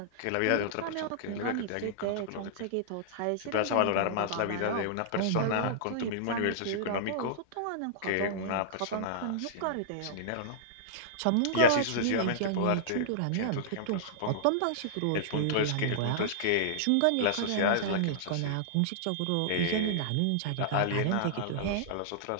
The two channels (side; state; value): both; different; correlation -0.02